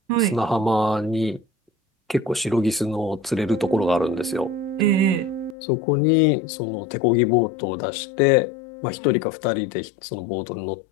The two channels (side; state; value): right; drops out; at 5.6 s